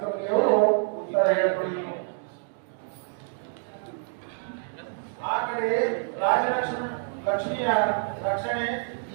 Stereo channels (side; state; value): left; silent; digital silence